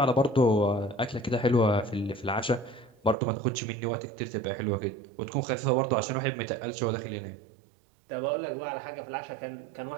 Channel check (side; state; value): left; drops out; at 3.2 s